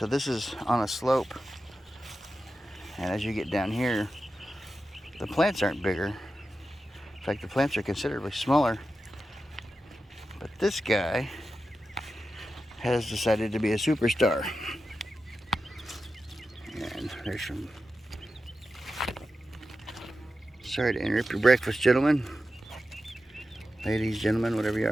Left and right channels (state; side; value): normal; both; correlation 0.91